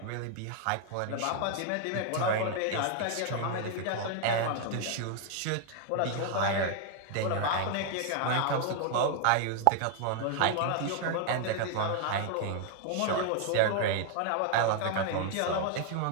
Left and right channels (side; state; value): both; different; correlation 0.00